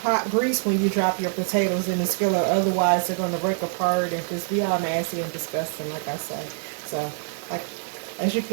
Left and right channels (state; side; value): silent; left; 62 dB below the other